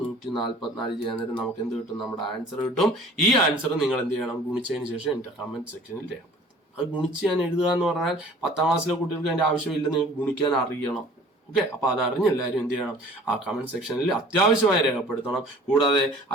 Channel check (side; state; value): both; normal; correlation 0.49